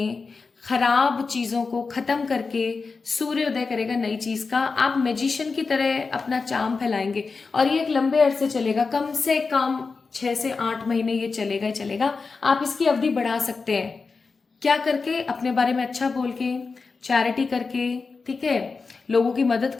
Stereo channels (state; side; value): quieter; right; 4.5 dB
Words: खराब चीजों को खत्म करके सूर्योदय करेगा नई चीज का। आप मैजिशियन की तरह अपना चार्म फैलाएंगे, और ये एक लंबे अरसे चलेगा, कम से कम 6 से 8 महीने ये चलेगा ही चलेगा। आप इसकी अवधि बढ़ा सकते हैं, क्या करके, अपने बारे में अच्छा बोल के, चैरिटी करके, ठीक है, लोगों की मदद